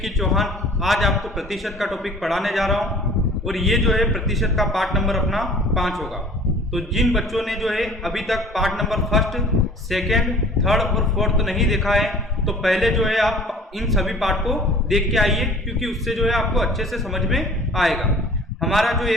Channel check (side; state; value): both; normal; correlation 0.48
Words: चौहान आज आपको प्रतिशत का टॉपिक पढ़ाने जा रहा हूं और ये जो है प्रतिशत का पार्ट नंबर अपना 5 होगा। तो जिन बच्चों ने जो है अभी तक part number first, second, third और फोर्थ नहीं देखा है तो पहले जो है आप इन सभी पार्ट को देख के आइए, क्योंकि उससे जो है आपको अच्छे से समझ में आएगा। हमारा जो